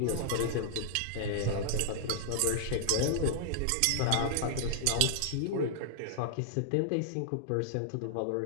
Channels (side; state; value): both; different; correlation -0.01